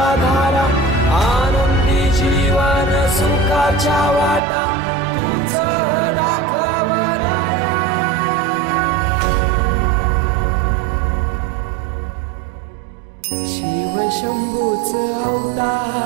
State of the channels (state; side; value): drops out; left; at 4.4 s